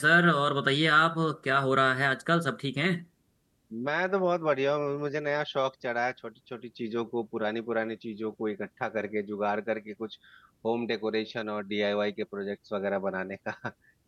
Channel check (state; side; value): identical; both; correlation 1.00